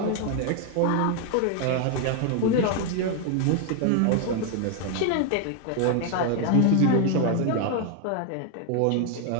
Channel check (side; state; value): both; different; correlation 0.00